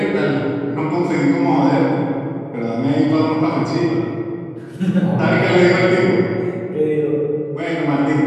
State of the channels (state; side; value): identical; both; correlation 1.00